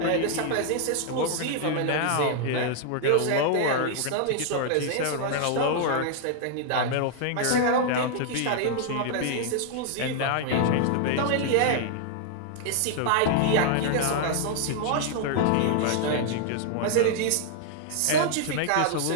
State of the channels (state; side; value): different; both; correlation 0.00